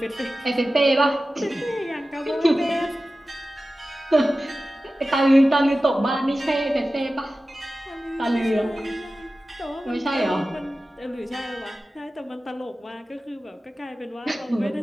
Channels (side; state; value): both; normal; correlation 0.95